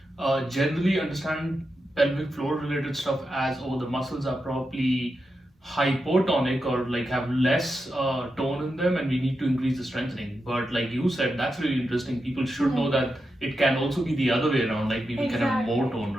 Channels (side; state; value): both; normal; correlation 0.88